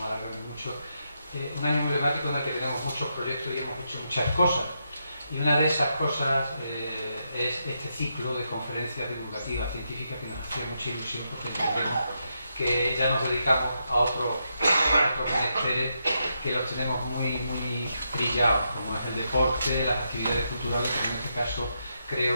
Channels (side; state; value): both; inverted; correlation -0.82